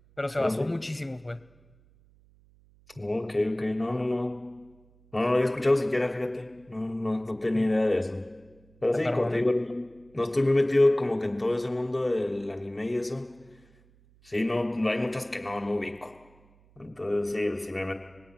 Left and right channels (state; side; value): noise; right; hum, 29 dB below the sound